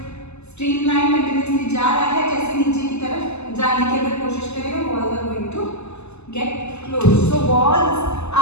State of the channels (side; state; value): right; late; 0.80 ms